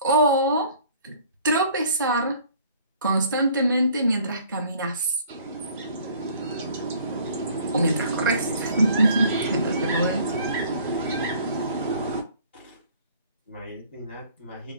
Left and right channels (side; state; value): both; inverted; correlation -0.54